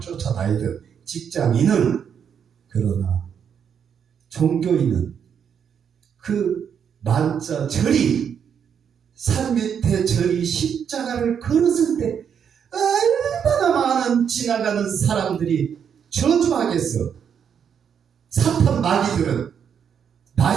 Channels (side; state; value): left; quieter; 7.7 dB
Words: 직장인은, 그러나 종교인은 그 만자 절이 산 밑에 절이 십자가를 걸었을 때 얼마나 많은 지나가는 사람들이 저주하겠어. 사탄 마귀들은